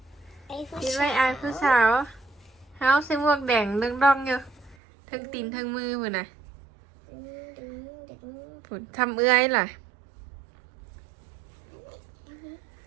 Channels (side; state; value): left; drops out; at 4.8 s